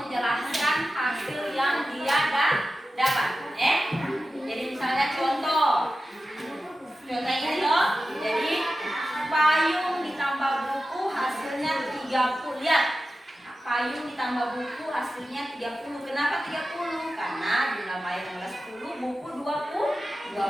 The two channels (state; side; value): normal; both; correlation 0.93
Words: hasil yang dia dapat. Jadi misalnya contoh ini loh. Jadi payung ditambah buku hasilnya 30. Lihat. Payung ditambah buku hasilnya 30. Kenapa 30? Karena jumlah payung adalah 10, buku